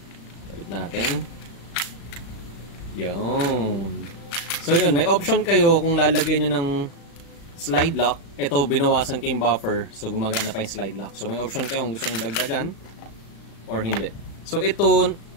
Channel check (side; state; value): right; late; 36 ms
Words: Kapit natin. Yun. So yun. May option kayo kung lalagyan nyo ng slide lock. Ito binawasan kayong buffer. So gumagana pa yung slide lock. So may option kayo kung gusto nyo dagdagan or hindi. So ito